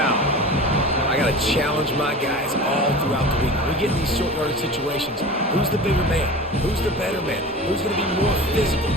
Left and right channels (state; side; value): normal; both; correlation 0.35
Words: I got to challenge my guys all throughout the week. We get in these short yardage situations. Who's the bigger man? Who's the better man? Who's going to be more physical?